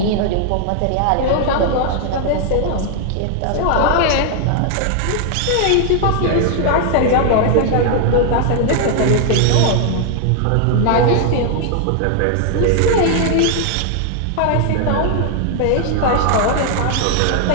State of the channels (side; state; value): both; different; correlation 0.00